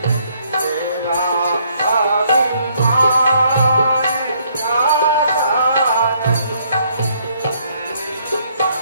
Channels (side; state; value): both; inverted; correlation -0.67